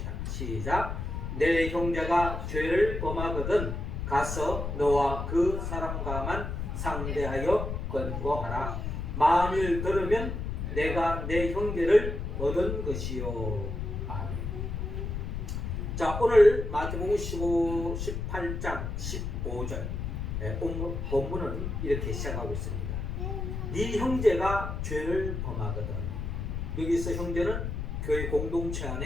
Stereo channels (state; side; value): noise; left; rumble, 4 dB below the sound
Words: 시작. 내 형제가 죄를 범하거든 가서 너와 그 사람과만 상대하여 권고하라. 만일 들으면 내가 내 형제를 얻은 것이요. 아멘. 자, 오늘 마태복음 18장 15절 본문은 이렇게 시작하고 있습니다. 네 형제가 죄를 범하거든. 여기서 형제는 교회 공동체